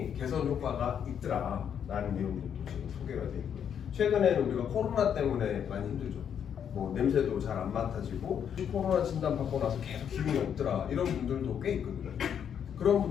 개선 효과가 있더라라는 내용들도 지금 소개가 되어 있고요. 최근에는 우리가 코로나 때문에 많이 힘들죠. 뭐 냄새도 잘 안 맡아지고 코로나 진단 받고 나서 계속 기분이 없더라 이런 분들도 꽤 있거든요. 그런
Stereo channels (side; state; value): right; quieter; 8.4 dB